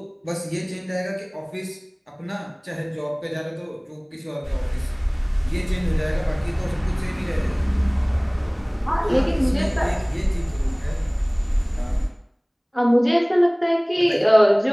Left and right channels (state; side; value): identical; both; correlation 1.00